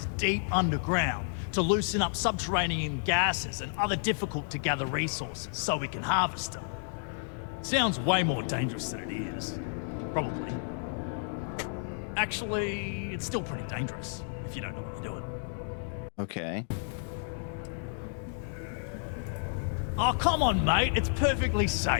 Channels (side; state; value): right; silent; digital silence